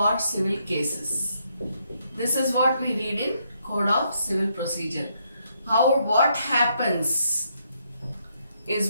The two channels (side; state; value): both; inverted; correlation -0.75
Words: civil cases. This is what we read in Code of Civil Procedure. What happens